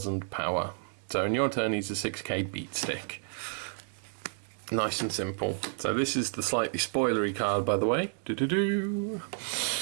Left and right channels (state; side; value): silent; left; 57 dB below the other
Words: power. So in your turn, he's a 6k beat stick. Nice and simple. So this is the slightly spoilery card, by the way. Do-do-do.